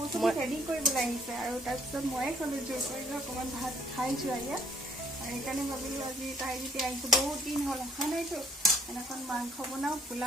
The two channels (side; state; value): both; normal; correlation 0.62